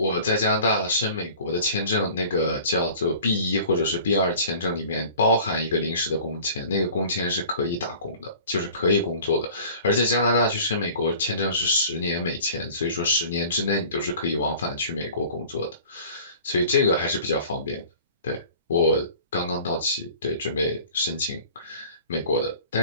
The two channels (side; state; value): both; inverted; correlation -0.45